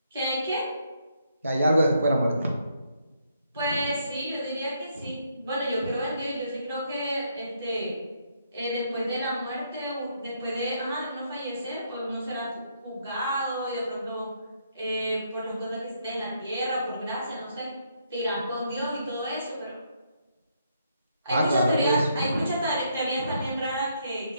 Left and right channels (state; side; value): inverted; both; correlation -0.74